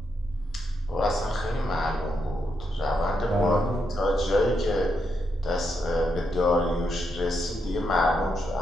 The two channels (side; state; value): both; normal; correlation 0.81